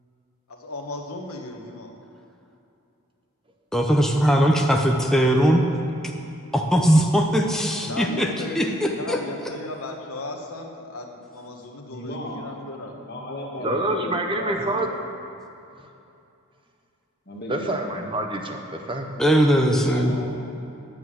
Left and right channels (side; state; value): both; normal; correlation 0.71